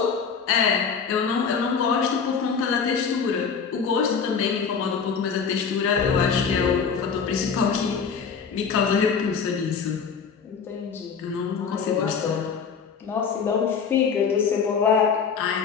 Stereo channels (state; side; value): quieter; right; 6.1 dB